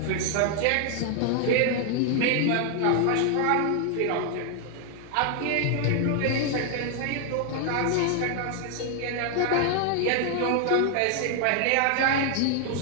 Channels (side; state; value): both; different; correlation 0.00